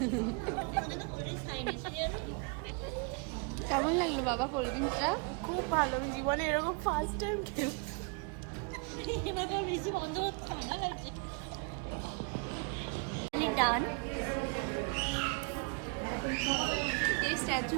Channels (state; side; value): quieter; left; 35.3 dB